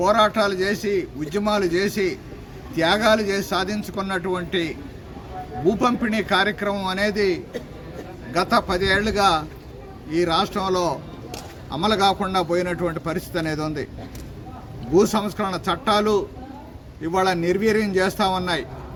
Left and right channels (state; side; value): identical; both; correlation 1.00